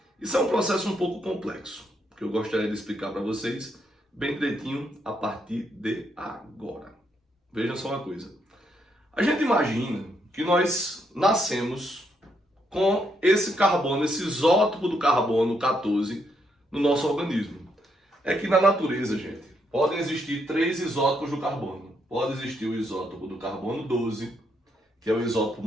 Isso é um processo um pouco complexo, que eu gostaria de explicar para vocês bem direitinho a partir de agora. Vejam só uma coisa. A gente imagina que nós nascemos com esse carbono, esse isótopo do carbono 14 no nosso organismo. É que na natureza, gente, podem existir 3 isótopos do carbono. Pode existir o isótopo do carbono 12, que é o isótopo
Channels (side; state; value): both; normal; correlation 0.76